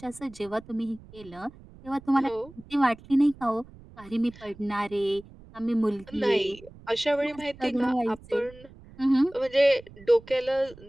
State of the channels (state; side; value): noise; right; rumble, 21 dB below the sound